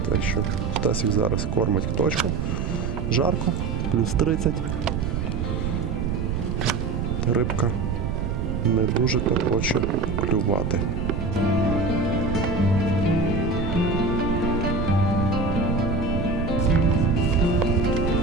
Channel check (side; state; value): right; noise; rumble, 1 dB below the sound